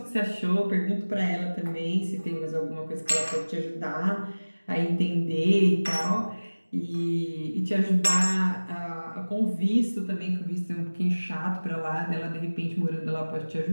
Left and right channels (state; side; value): inverted; both; correlation -1.00